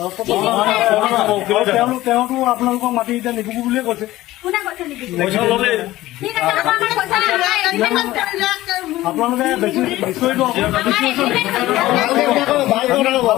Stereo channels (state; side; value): quieter; right; 16.5 dB